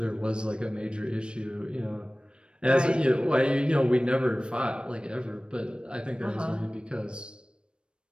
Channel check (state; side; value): late; left; 0.055 ms